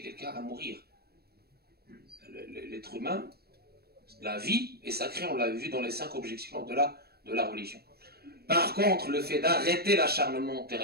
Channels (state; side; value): late; left; 0.46 ms